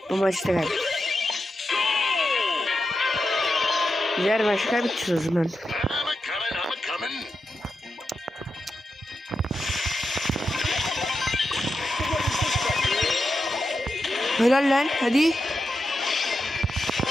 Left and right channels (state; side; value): normal; both; correlation 0.88